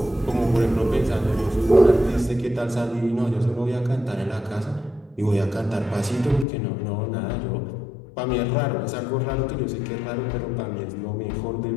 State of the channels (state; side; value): drops out; right; at 6.5 s